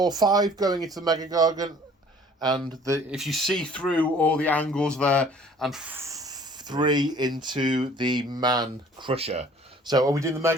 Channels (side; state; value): both; normal; correlation 0.53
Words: going into the Mega Gargant. And if you see through all the angles there, and 3 into the Man Crusher. So are we doing the